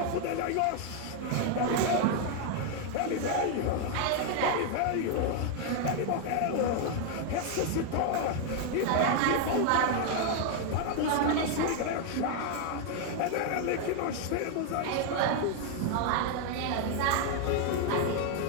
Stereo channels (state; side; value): different; both; correlation 0.00